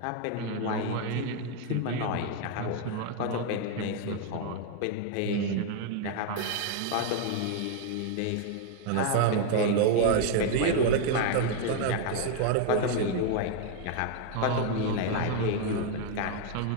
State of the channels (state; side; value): different; both; correlation 0.00